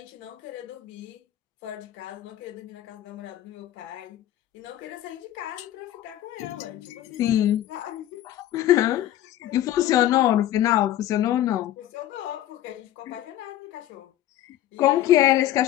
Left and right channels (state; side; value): quieter; right; 13.0 dB